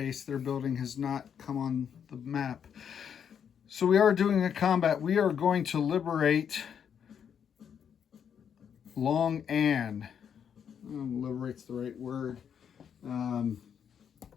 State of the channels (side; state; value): right; quieter; 8.0 dB